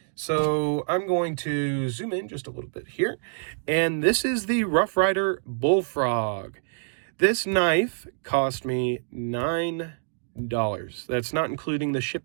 So I'm going to zoom in just a little bit here. And this is the Rough Rider Bullfrog. This knife cost me $9. That's not including the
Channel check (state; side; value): silent; left; digital silence